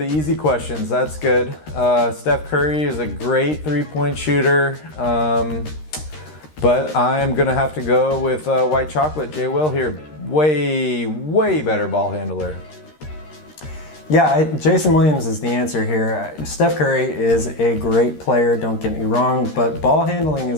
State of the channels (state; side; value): late; right; 13 ms